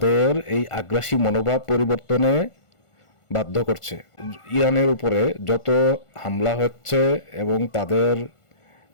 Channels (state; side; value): late; right; 1.5 ms